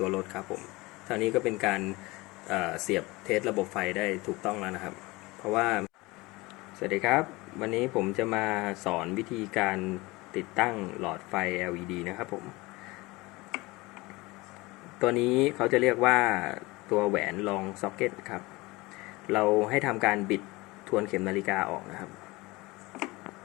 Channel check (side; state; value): right; quieter; 22.4 dB